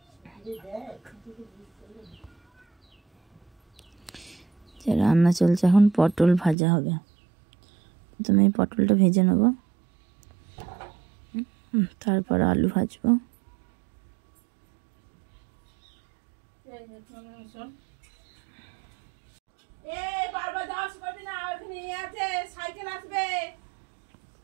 রান্না চলছে। এখন পটল ভাজা হবে। প্রথমে পটলটা ভেজে নেব, তারপর আলু ভাজবো।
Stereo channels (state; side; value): drops out; left; at 6.6 s